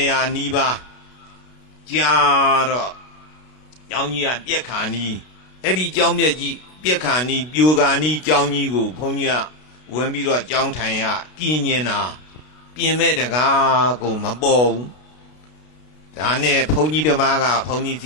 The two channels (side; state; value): right; late; 32 ms